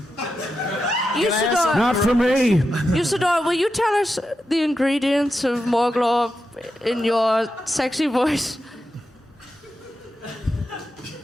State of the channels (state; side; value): normal; both; correlation 0.88